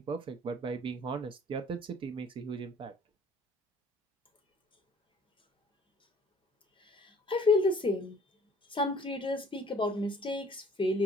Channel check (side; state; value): both; normal; correlation 0.54